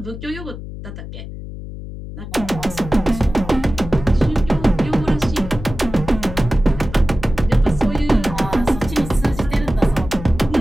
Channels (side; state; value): left; noise; hum, 11 dB below the sound